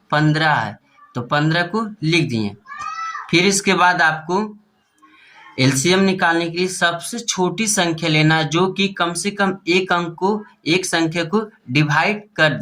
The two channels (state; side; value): identical; both; correlation 1.00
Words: 15 है, तो 15 को लिख दिए। फिर इसके बाद आपको एलसीएम निकालने के लिए सबसे छोटी संख्या लेना है जो कि कम से कम एक अंक को, एक संख्या को डिवाइड कर